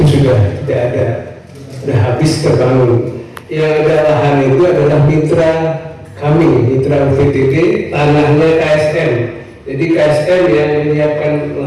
sudah tidak ada, sudah habis terbangun. Yang ada lahan itu adalah mitra kami, mitra UVTT, tanahnya KSM. Jadi KSM yang menyiapkan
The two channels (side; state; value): both; identical; correlation 1.00